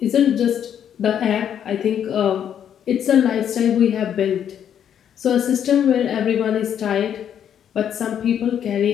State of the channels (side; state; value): right; quieter; 9.2 dB